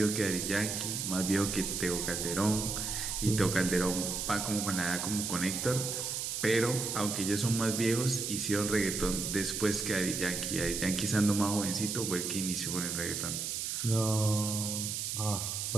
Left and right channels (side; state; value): right; noise; hiss, 2 dB below the sound